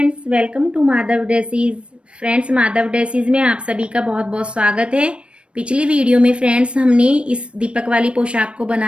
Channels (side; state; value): left; late; 0.059 ms